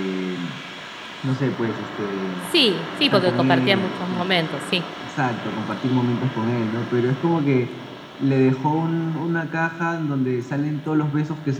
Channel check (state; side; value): identical; both; correlation 1.00